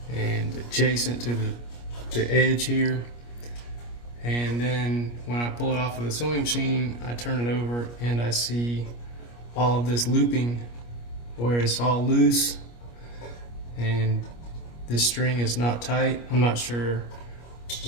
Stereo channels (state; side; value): late; right; 25 ms